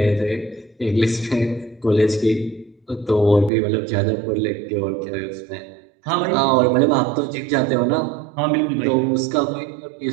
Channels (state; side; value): drops out; left; at 3.5 s